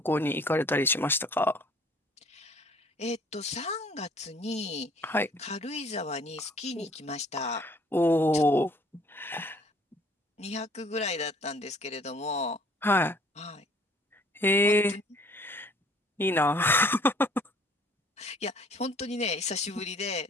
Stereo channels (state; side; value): normal; both; correlation 0.56